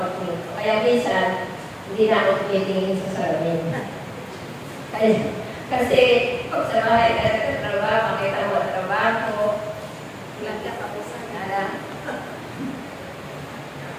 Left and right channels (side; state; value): both; identical; correlation 1.00